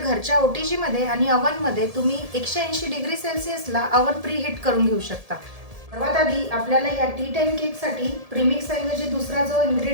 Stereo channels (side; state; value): left; late; 1.7 ms